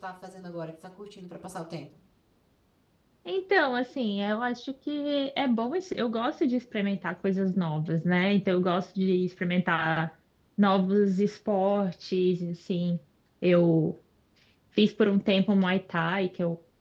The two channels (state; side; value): identical; both; correlation 1.00